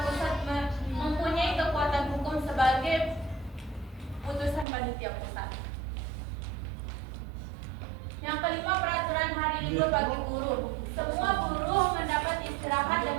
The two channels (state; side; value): drops out; left; at 4.7 s